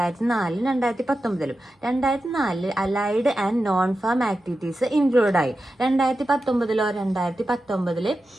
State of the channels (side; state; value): both; normal; correlation 0.91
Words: 2019. 2004 allied and non farm activities include ആയി. 2019